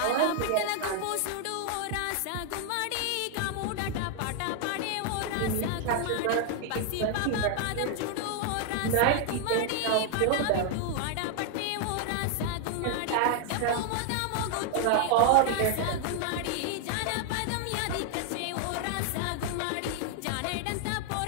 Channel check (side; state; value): both; different; correlation 0.00